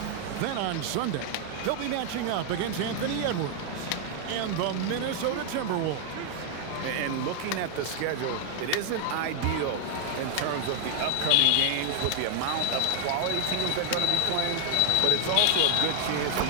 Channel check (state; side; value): different; both; correlation 0.00